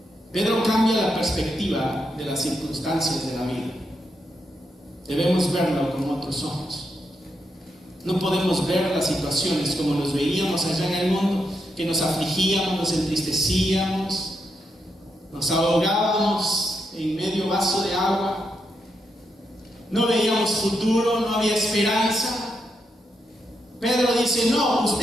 Pedro cambia la perspectiva de las circunstancias de la vida. Debemos verlo con otros ojos. No podemos ver las situaciones como los veíamos allá en el mundo, que nos afligíamos, nos entristecíamos, nos ahogábamos en medio vaso de agua. No veíamos futuro, no había esperanza. Pedro dice: no,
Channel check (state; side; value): normal; both; correlation 0.82